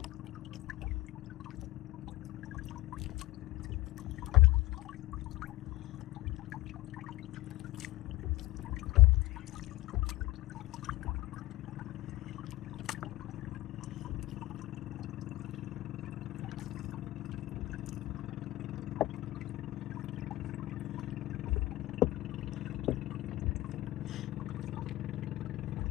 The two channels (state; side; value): quieter; right; 18.1 dB